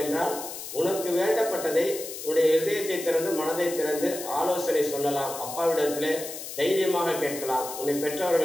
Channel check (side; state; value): left; noise; hiss, 9 dB below the sound